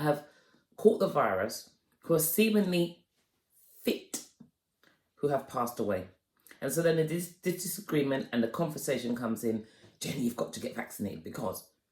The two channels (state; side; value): identical; both; correlation 1.00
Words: have caught the virus who are seemingly fit who have passed away. And so then the disagreement and the conversation comes in, Jenny, you've got to get vaccinated, because